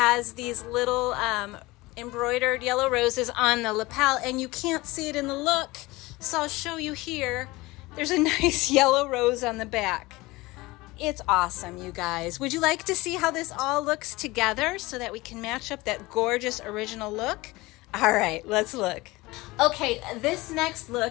these little embroidered yellow roses on the lapel, and you can't see it in the look, so I'll show you here. There's a nice yellow rose on the back. It's awesome, you guys. Would you like to see how this all looks together so that we can match up that gorgeous original look? All right, let's look. Okay, this next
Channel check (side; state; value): right; quieter; 21.2 dB